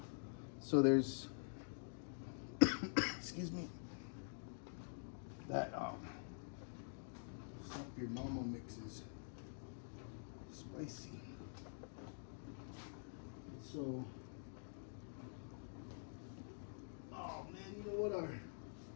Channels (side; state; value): right; silent; digital silence